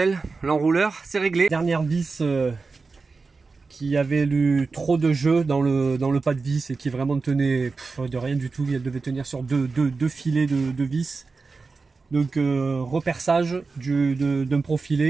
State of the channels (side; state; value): left; quieter; 4.2 dB